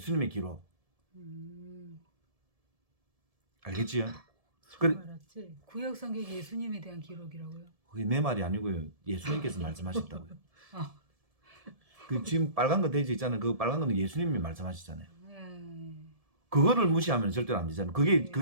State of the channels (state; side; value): late; left; 1.7 ms